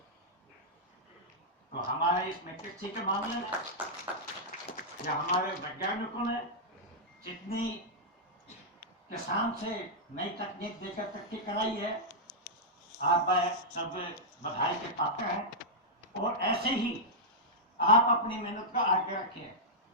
तो हमारे इसमें कृषि के मामले में या हमारे वैज्ञानिकों ने जितनी किसान से नई तकनीक देकर तरक्की कराई है, आप सब बधाई के पात्र हैं। और ऐसे ही आप अपनी मेहनत का आगे रखिए।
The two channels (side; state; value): both; normal; correlation -0.09